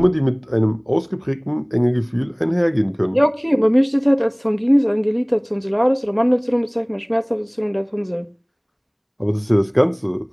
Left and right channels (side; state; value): both; identical; correlation 1.00